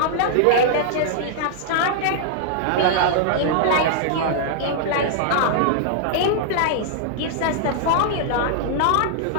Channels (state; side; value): different; both; correlation -0.01